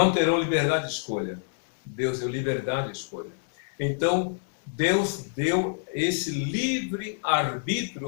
terão liberdade de escolha. Deus deu liberdade de escolha. Então, Deus deu esse livre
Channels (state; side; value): silent; right; 59 dB below the other